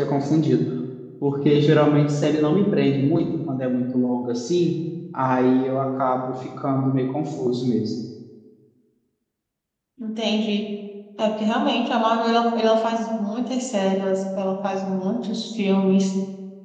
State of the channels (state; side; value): identical; both; correlation 1.00